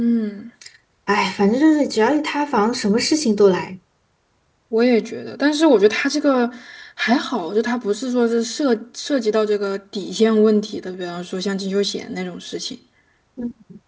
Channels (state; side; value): identical; both; correlation 1.00